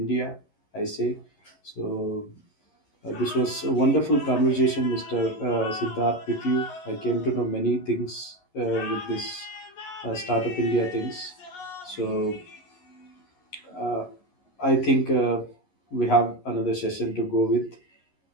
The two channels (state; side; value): late; right; 11 ms